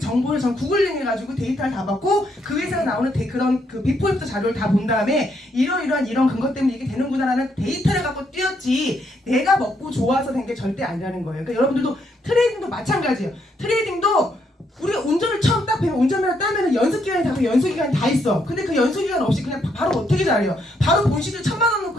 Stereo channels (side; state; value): both; normal; correlation 0.75